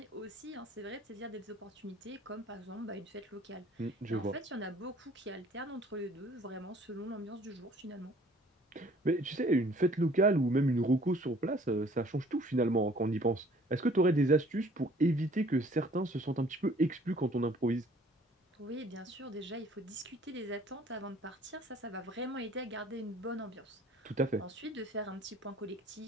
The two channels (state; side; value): normal; both; correlation 0.55